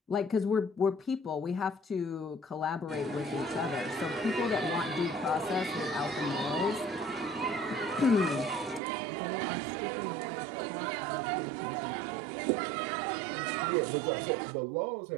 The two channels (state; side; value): drops out; left; at 8.8 s